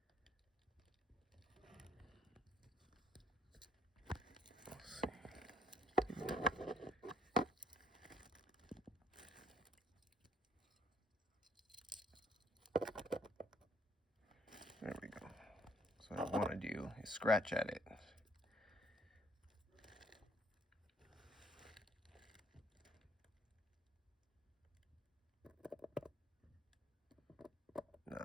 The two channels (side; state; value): both; normal; correlation 0.64